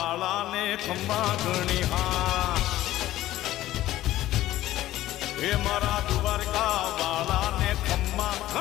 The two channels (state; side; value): quieter; right; 14.9 dB